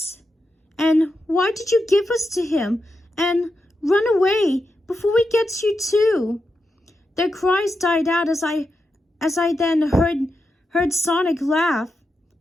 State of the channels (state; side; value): normal; both; correlation 0.87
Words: and "Why did you give us to him?" and "Run away before we get you too." Their cries died out as I then heard Sonic laugh.